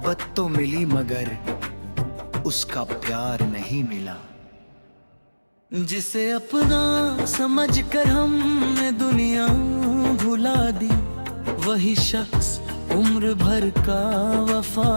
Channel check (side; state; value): both; inverted; correlation -1.00